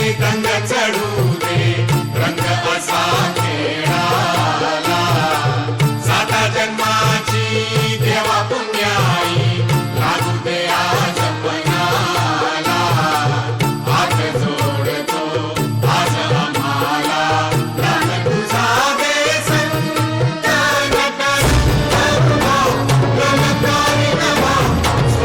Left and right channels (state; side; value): identical; both; correlation 1.00